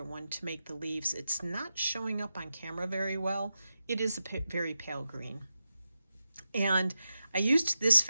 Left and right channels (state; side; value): inverted; both; correlation -0.90